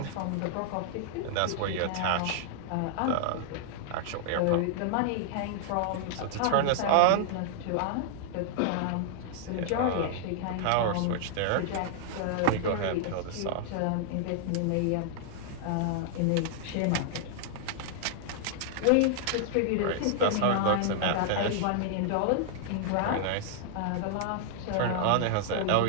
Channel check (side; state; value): both; different; correlation -0.01